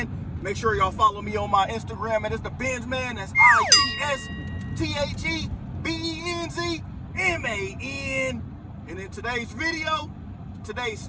Make sure y'all follow me on my Instagram, and it's the Benz Man. That's ITSTAGBENZMAN. And in today's video,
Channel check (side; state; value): both; identical; correlation 1.00